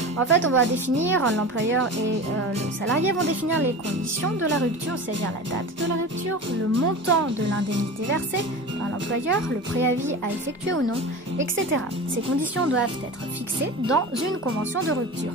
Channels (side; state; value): both; normal; correlation 0.31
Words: En fait, on va définir, l'employeur et le salarié vont définir les conditions de la rupture, c'est-à-dire la date de la rupture, le montant de l'indemnité versée par l'employeur, le préavis à effectuer ou non, etc. Ces conditions doivent être fixées dans une convention de rupture.